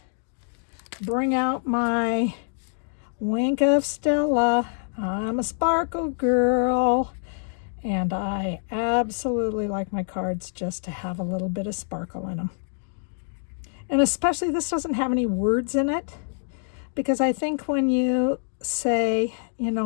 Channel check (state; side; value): silent; right; digital silence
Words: bring out my wink of Stella. I'm a sparkle girl, and I absolutely like my cards just to have a little bit of sparkle in them. And especially this doesn't have any words in it, because I think when you say, you